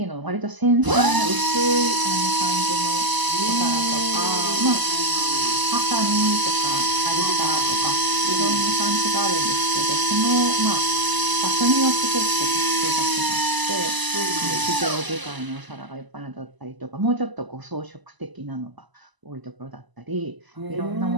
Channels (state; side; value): late; left; 1.0 ms